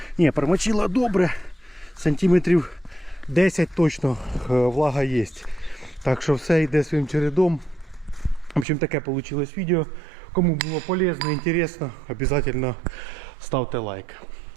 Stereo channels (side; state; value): left; drops out; at 8.7 s